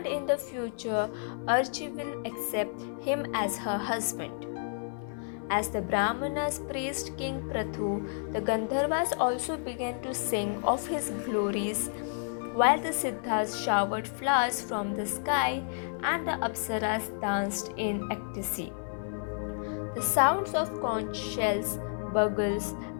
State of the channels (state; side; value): silent; right; 57 dB below the other